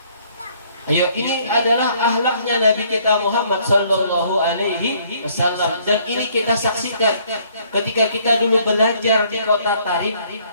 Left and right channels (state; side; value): inverted; both; correlation -0.63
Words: Ayo, ini adalah akhlaknya Nabi kita Muhammad sallallahu alaihi wasallam, dan ini kita saksikan ketika kita dulu belajar di kota Tarim